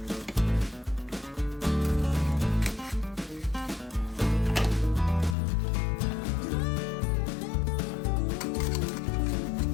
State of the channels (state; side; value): drops out; right; at 5.4 s